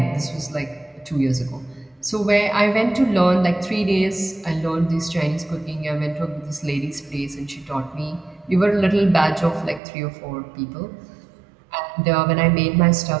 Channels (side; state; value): left; drops out; at 9.8 s